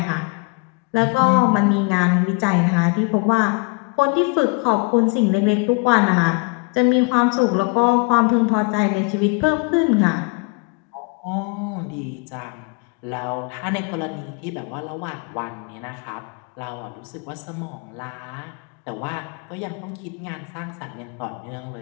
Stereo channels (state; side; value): quieter; right; 31.3 dB